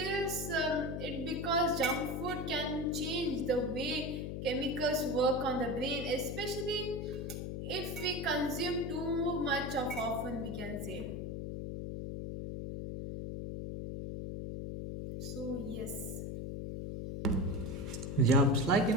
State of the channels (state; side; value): noise; left; hum, 5 dB below the sound